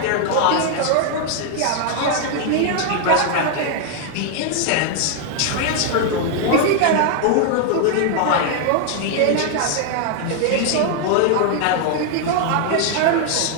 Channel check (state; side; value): different; both; correlation 0.00